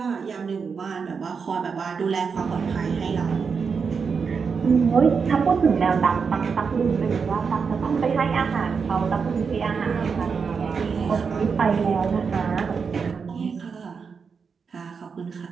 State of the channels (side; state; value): left; quieter; 5.7 dB